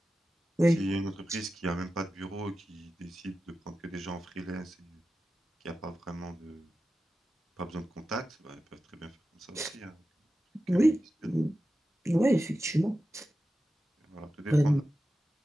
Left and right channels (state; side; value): normal; both; correlation 0.93